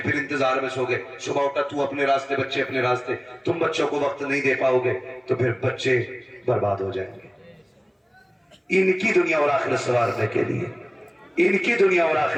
انتظار میں سو گئے، صبح اٹھا تو اپنے راستے بچے اپنے راستے، تم بچوں کو وقت نہیں دے پاؤ گے تو پھر بچے برباد ہو جائیں گے۔ ان کی دنیا اور آخرت سنوارنے کے لیے ان کی دنیا اور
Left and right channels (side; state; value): both; identical; correlation 1.00